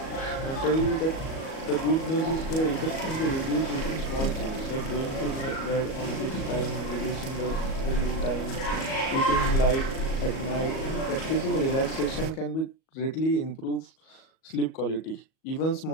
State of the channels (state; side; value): late; right; 37 ms